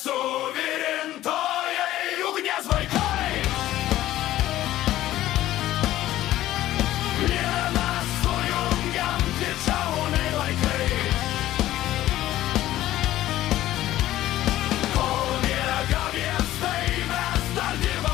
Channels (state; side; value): quieter; right; 14.4 dB